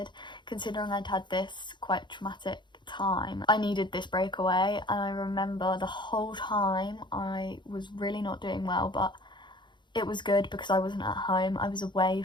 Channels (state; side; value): late; right; 0.22 ms